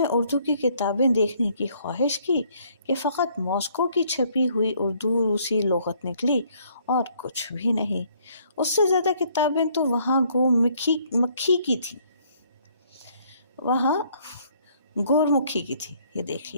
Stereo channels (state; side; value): inverted; both; correlation -0.65